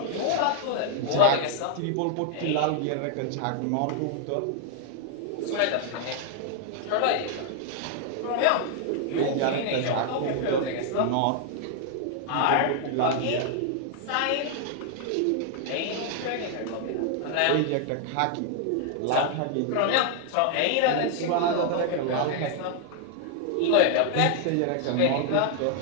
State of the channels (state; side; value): different; both; correlation 0.00